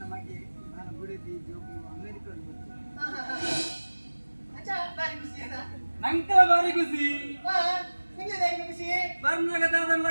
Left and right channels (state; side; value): inverted; both; correlation -1.00